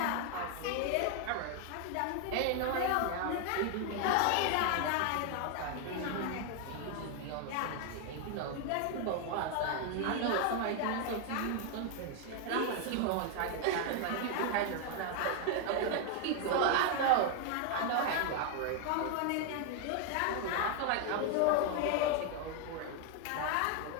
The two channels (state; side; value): different; both; correlation 0.00